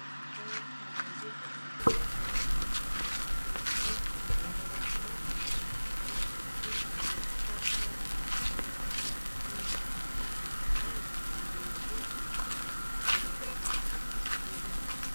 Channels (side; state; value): both; inverted; correlation -1.00